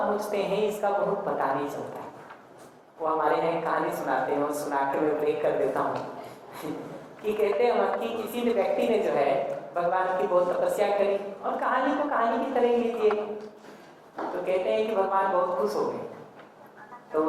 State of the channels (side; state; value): both; identical; correlation 1.00